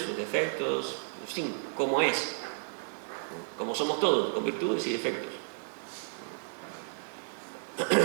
sus defectos, en fin, cómo es. Como somos todos, con virtudes y defectos.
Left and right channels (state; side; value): silent; left; 56 dB below the other